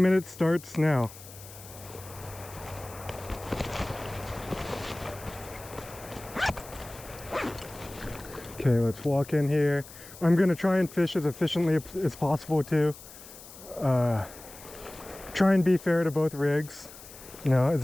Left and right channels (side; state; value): left; noise; hiss, 17 dB below the sound